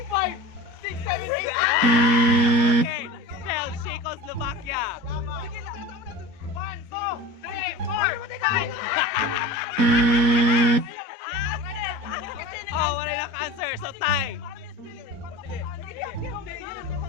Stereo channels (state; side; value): late; left; 4.2 ms